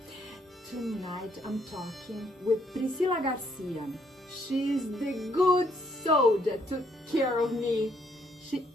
Tonight I'm talking with Priscila Garcia. She's the good soul that took care of me.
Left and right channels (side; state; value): both; normal; correlation 0.70